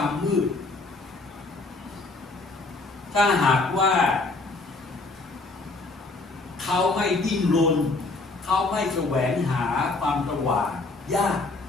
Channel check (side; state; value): right; quieter; 3.4 dB